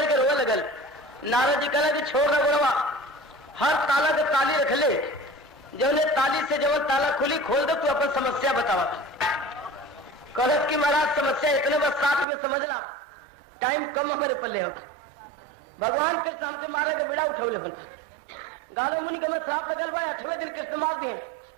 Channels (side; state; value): left; drops out; at 12.2 s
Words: के रोने लगल। नारद जी कहला कि छोड़ ना गुणवा, हर ताला के ताली रख ले, जो ने ताली से जो ताला खुली खोल दो, तू अपन समस्या बतावा। कहलत कि महाराज समस्या इतने बस 60 में समझना, टाइम कम हमारे पल्ले हो। भगवान कृष्ण हमके मारे के बेड़ा उठौले बन गारो मुनि के श्राप लगल बा, 8वें दिन कृष्ण मार दिए,